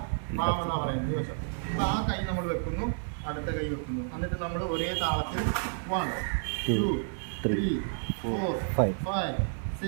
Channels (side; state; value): left; silent; digital silence